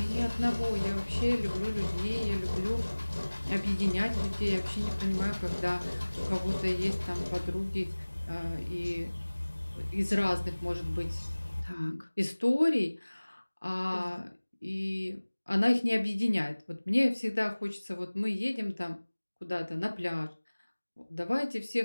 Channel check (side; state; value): both; inverted; correlation -1.00